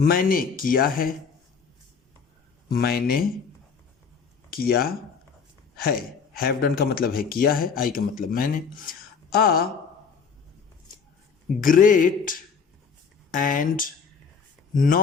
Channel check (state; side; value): quieter; right; 5.8 dB